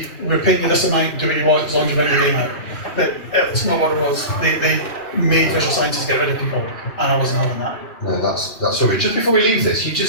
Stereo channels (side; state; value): right; late; 2.7 ms